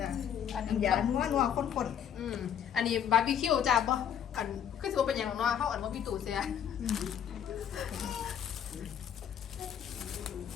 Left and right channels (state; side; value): quieter; right; 9.0 dB